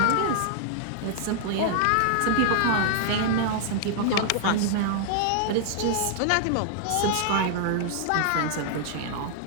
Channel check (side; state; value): both; different; correlation -0.01